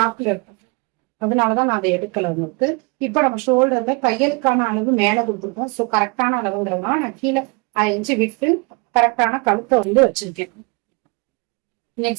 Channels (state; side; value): quieter; left; 29.9 dB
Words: இருக்கும். அதனாலதான் நான் அதை எடுக்கல உங்களுக்கு. இப்ப நம்ம ஷோல்டர்ல தையலுக்கான அளவு மேல கொடுத்துருக்கோம். சோ கரெக்டான அளவுங்கிறதுனால நான் கீழே 5 இன்ச்சு விட்டு கரெக்டான கழுத்தை வந்து வச்சிருக்கேன்.